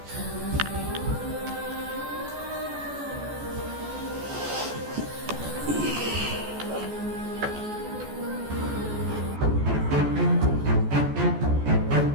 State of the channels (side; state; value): left; late; 14 ms